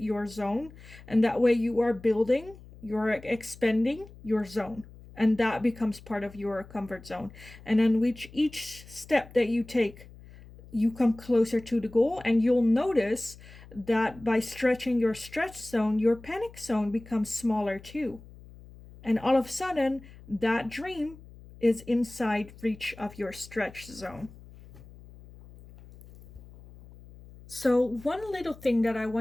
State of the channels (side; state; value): left; noise; hum, 20 dB below the sound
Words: zone. And that way you are building, you're expanding your zone. And that becomes part of your comfort zone. And then with each step that you take, you come closer to the goal. And you'll notice that by stretching your stretch zone, your panic zone becomes smaller too. And all of a sudden, that dream is inside reach of your stretch zone. So one little thing that I